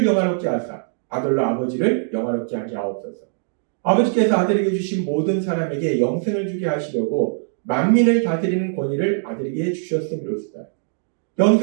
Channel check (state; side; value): silent; left; 65 dB below the other